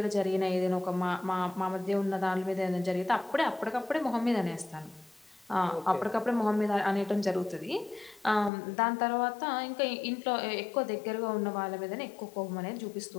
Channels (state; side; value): drops out; right; at 8.5 s